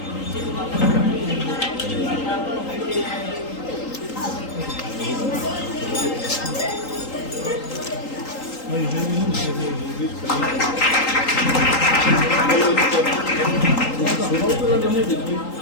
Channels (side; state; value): right; late; 3.8 ms